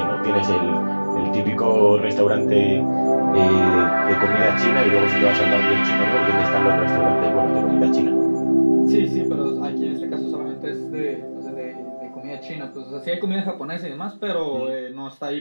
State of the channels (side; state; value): both; inverted; correlation -1.00